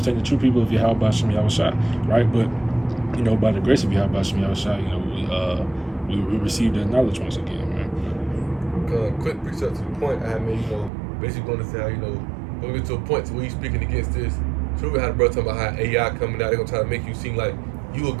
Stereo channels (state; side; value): drops out; left; at 10.9 s